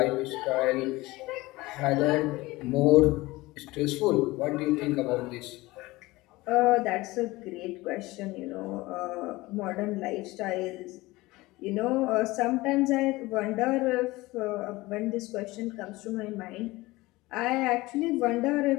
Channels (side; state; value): right; quieter; 20.3 dB